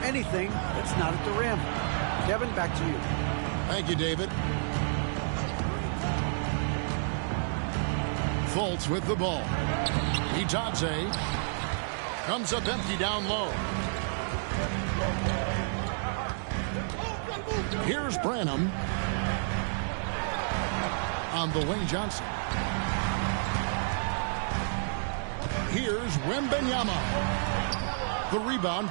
that's not at the rim. Kevin, back to you. Thank you, David. Fultz with the ball. Itadze comes up empty down low. Here's Branham on the wing. Johnson. Here's Wembanyama. The rebound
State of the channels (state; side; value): silent; left; digital silence